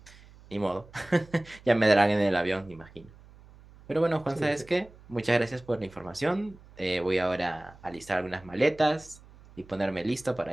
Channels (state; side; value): noise; right; hum, 23 dB below the sound